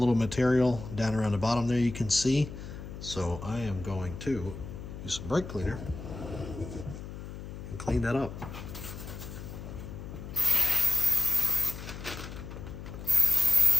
material down around the bottom there you can see, so I am going to use some brake cleaner and clean that up.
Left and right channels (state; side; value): noise; left; hum, 10 dB below the sound